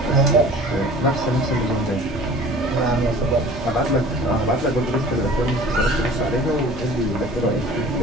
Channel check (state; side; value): normal; both; correlation 0.45